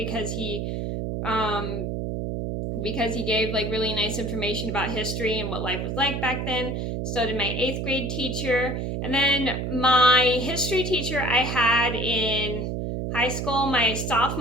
he gave really nice information about history and what life was like back then. So did my 8th grade teacher. And then my history teacher I had in high school, my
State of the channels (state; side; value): noise; right; hum, 2 dB below the sound